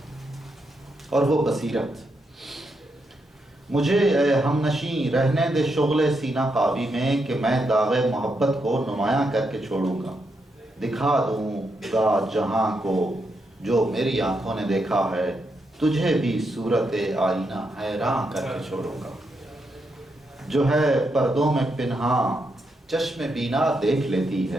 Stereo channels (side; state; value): both; normal; correlation 0.82